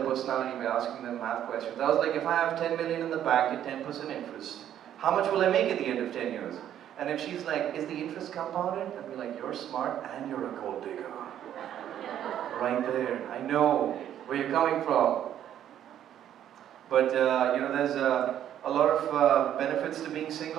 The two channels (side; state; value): left; quieter; 10.7 dB